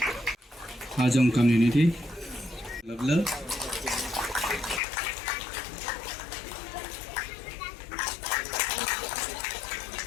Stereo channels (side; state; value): right; drops out; at 4.8 s